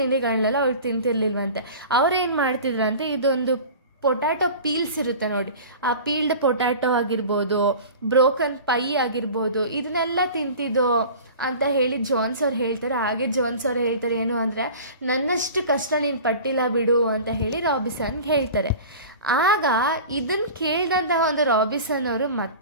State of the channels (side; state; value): both; inverted; correlation -0.38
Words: ಅವ್ರು ತಿಂತಿರ್ಲಿಲ್ವಂತೆ. ಅವ್ರೇನು ಮಾಡ್ತಿದ್ರಂತೆ, ಇದೊಂದು ಪೊಟ್ಯಾಟೊ ಪೀಲ್ಸ್ ಇರುತ್ತೆ ನೋಡಿ, ಆ ಪೀಲ್ಡ್ ಪೊಟ್ಯಾಟೊ ಆಗಿರ್ಬೋದು, ಬ್ರೋಕನ್ ಪೈ ಆಗಿರ್ಬೋದು, ಇದನ್ನೆಲ್ಲ ತಿಂತಿದ್ದೋ ಅಂತ ಹೇಳಿ ಜೋನ್ಸ್ ಅವ್ರು ಹೇಳ್ತಾರೆ. ಹಾಗೆ ಜೋನ್ಸ್ ಅವ್ರು ಹೇಳ್ತಾರೆ ಏನು ಅಂದರೆ, ನನ್ನಷ್ಟು ಕಷ್ಟ ನೀನು ಪಟ್ಟಿಲ್ಲ ಬಿಡು ಅಂತ ಹೇಳಿ ರಾಬಿನ್ಸನ್ಗೆ ಹೇಳ್ತಾರೆ. ಆಗ ಇದನ್ನು ಕೇಳಿದಂತಹ ಒಂದು ರಾಬಿನ್ಸನ್ ಅವರು